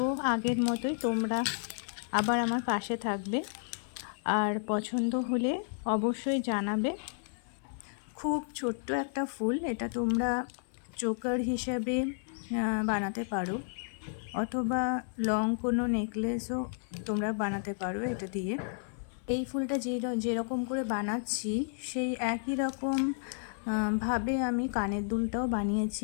আগের মতোই তোমরা আবার আমার পাশে থাকবে, আর পছন্দ হলে অবশ্যই জানাবে। খুব ছোট্ট একটা ফুল, এটা তোমরা চোকার হিসাবে বানাতে পারো, অথবা লং কোনো নেকলেসও তোমরা বানাতে পারো এটা দিয়ে। এই ফুলটা যেরকম করে বানাচ্ছি সেই একই রকম ভাবে আমি কানের দুলটাও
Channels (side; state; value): right; silent; 56 dB below the other